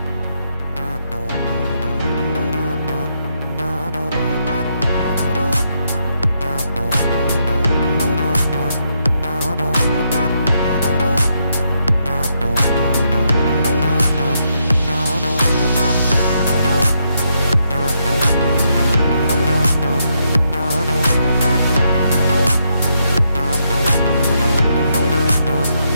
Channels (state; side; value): inverted; both; correlation -0.78